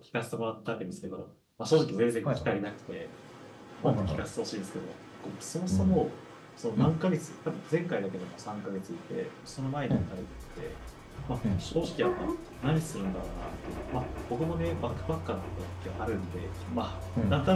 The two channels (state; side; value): identical; both; correlation 1.00